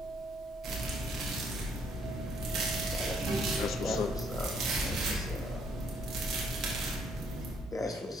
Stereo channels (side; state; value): both; normal; correlation 0.68